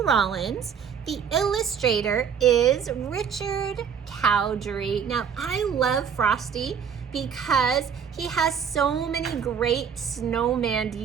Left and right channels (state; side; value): quieter; left; 7.3 dB